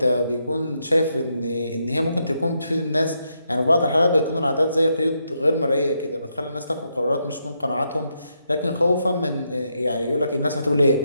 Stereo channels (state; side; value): inverted; both; correlation -0.80